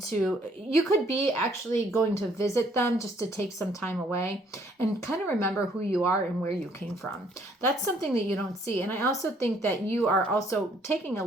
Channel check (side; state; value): both; normal; correlation 0.64